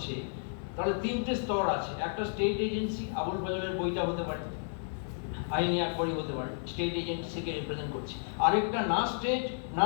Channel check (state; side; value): silent; right; digital silence